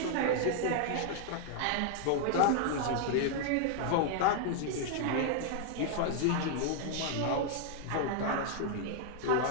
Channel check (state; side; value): different; both; correlation 0.00